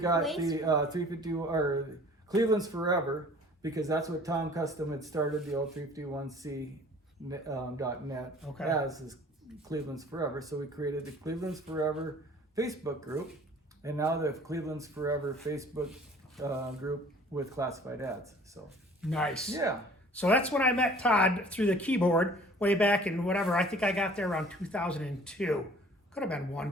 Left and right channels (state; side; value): normal; both; correlation 0.50